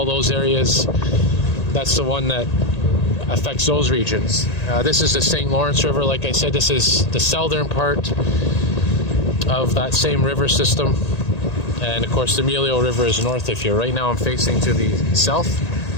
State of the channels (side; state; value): right; late; 1.8 ms